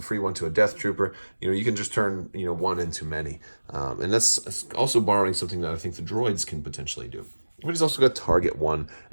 free one to a Death Trooper. You can just turn one into many, and that's also borrowing something that I think the droids can potentially do. But he's also got target 1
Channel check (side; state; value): both; inverted; correlation -1.00